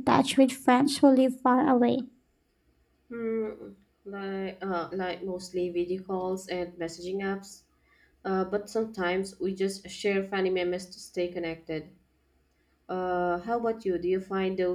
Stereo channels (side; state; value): both; identical; correlation 1.00